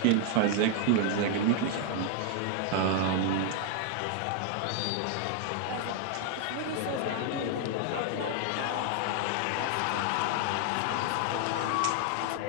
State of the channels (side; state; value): both; different; correlation 0.00